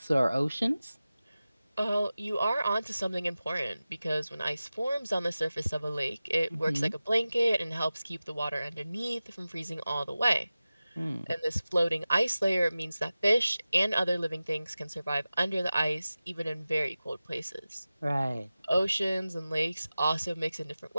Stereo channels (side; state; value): both; inverted; correlation -0.95